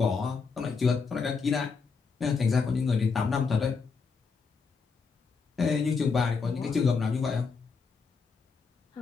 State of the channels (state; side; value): quieter; right; 5.0 dB